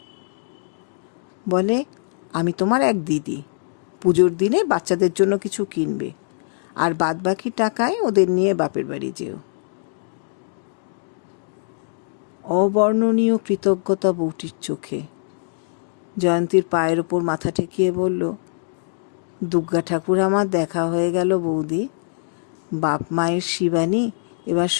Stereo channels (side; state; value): right; silent; digital silence